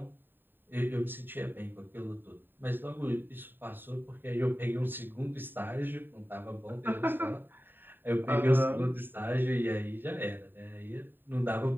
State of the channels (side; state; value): left; late; 0.095 ms